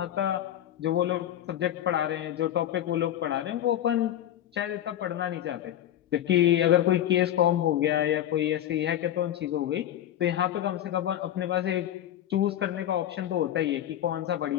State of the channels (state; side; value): quieter; right; 11.7 dB